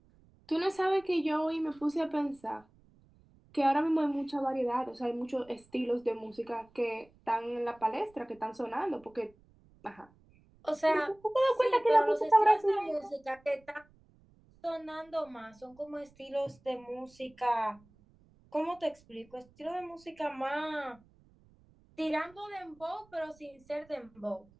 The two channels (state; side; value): noise; right; rumble, 29 dB below the sound